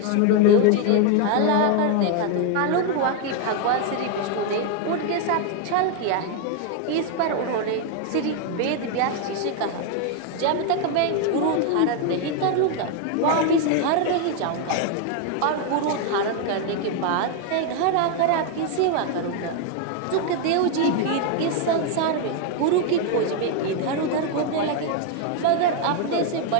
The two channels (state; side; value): different; both; correlation 0.01